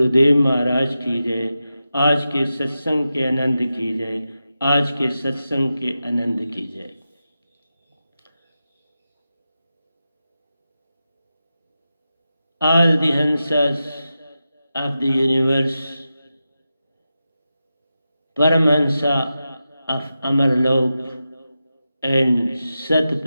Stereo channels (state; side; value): inverted; both; correlation -0.91